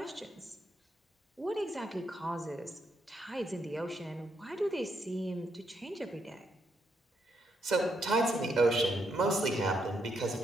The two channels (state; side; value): normal; both; correlation 0.78